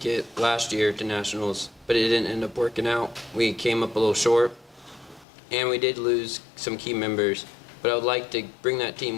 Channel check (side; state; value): right; drops out; at 5.2 s